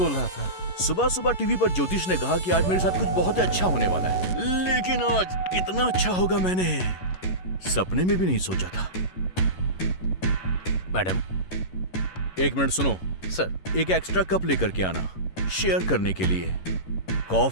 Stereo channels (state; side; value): late; right; 11 ms